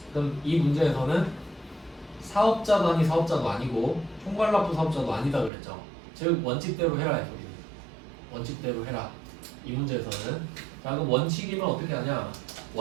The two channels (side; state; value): left; drops out; at 5.5 s